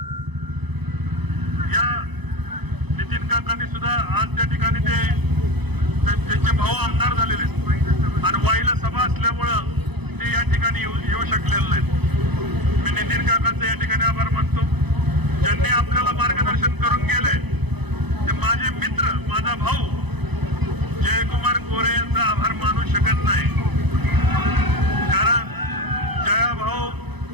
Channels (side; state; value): left; late; 0.99 ms